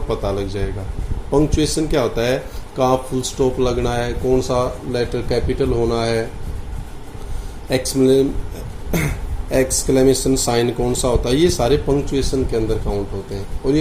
पता लग जाएगा। पंक्चुएशन क्या होता है, कहाँ फुल स्टॉप लगना है, कौन सा लेटर कैपिटल होना है, एक्सक्लेमेशन साइन कौन सा होता है, ये सारे पंक्चुएशन के अंदर काउंट होते हैं। और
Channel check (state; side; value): identical; both; correlation 1.00